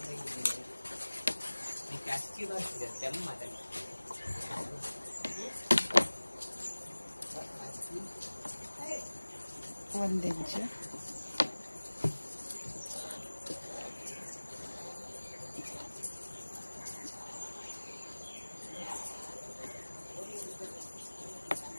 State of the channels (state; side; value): inverted; both; correlation -1.00